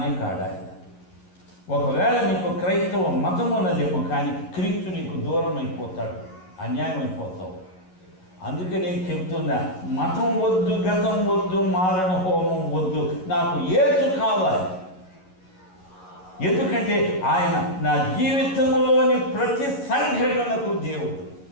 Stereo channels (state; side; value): late; right; 11 ms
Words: కాడు ఆయన. ఒకవేళ నీకు క్రైస్తవ మతం ఉన్నదేమో, కానీ క్రీస్తు నీకు దూరం అయిపోతాడు, అన్యాయం అయిపోతావు. అందుకే నేను చెప్తున్నా, మతం వద్దు, గతం వద్దు, మారణ హోమం వద్దు, నాకు యేసు కావాలి. ఎందుకంటే ఆయన నా జీవితంలోని ప్రతి సంఘటనకు దేవుడు.